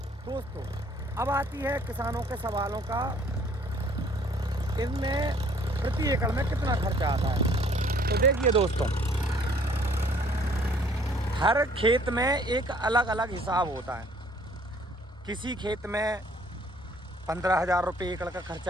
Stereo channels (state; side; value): normal; both; correlation 0.58